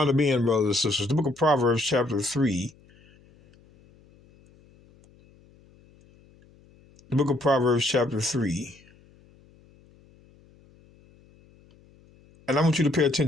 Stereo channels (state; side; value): noise; left; hum, 29 dB below the sound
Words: to being, brothers and sisters? The book of Proverbs, chapter 3. The book of Proverbs, chapter 3. And I want you to pay